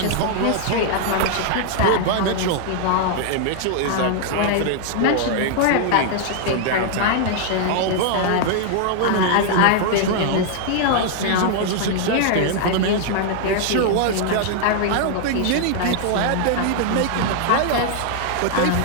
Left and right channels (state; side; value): different; both; correlation 0.00